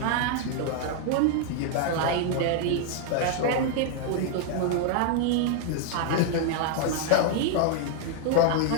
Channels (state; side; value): different; both; correlation 0.00